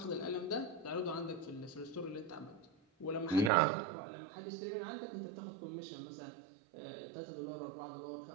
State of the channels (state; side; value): drops out; left; at 3.5 s